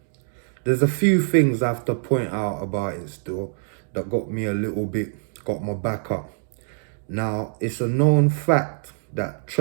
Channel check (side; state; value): left; silent; digital silence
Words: There's a few things I have to point out about it still that got me a little bit, got my back up. Now, it's a known fact that